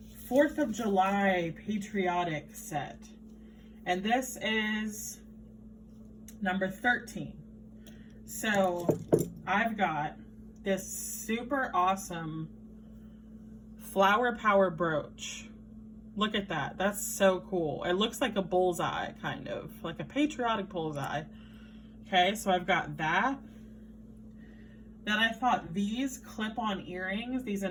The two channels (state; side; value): identical; both; correlation 1.00